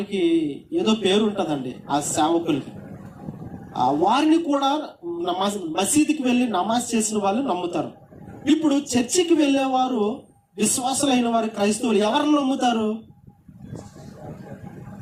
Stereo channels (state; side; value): identical; both; correlation 1.00